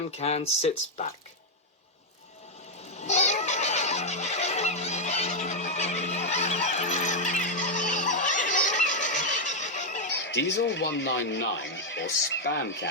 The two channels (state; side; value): normal; both; correlation 0.00